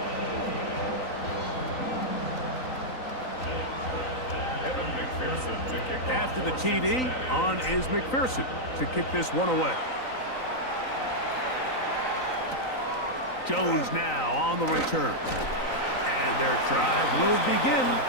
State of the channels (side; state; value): right; late; 3.9 ms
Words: After the TD, on is McPherson to kick this one away. Jones now on the return. And their drive will begin